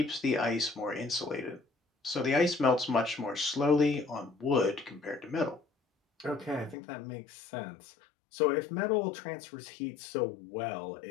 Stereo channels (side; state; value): right; drops out; at 6.8 s